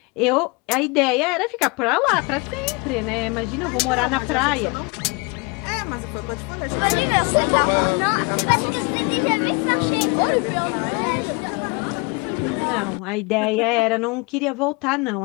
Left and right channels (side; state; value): right; quieter; 28.9 dB